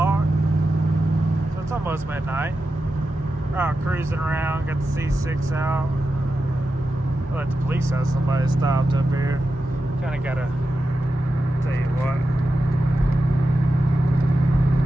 So it's almost midnight. We're out cruising around, got the C6 out. I let the police have somebody stopped up here. Kind of gotta tell you what.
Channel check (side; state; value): both; normal; correlation 0.91